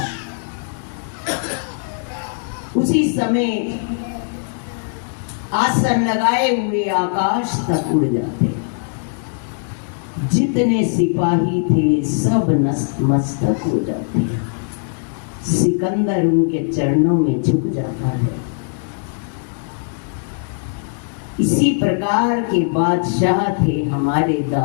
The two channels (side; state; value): right; silent; digital silence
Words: उसी समय आसन लगाए हुए आकाश तक उड़ जाते। जितने सिपाही थे सब नतमस्तक हो जाते। सिकंदर उनके चरणों में झुक जाता है। इसी प्रकार के बादशाह थे हमारे